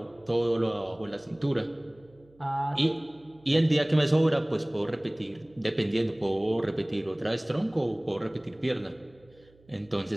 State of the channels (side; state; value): right; noise; hum, 29 dB below the sound